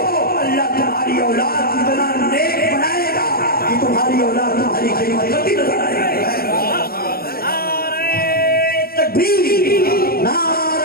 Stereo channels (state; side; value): late; right; 0.44 ms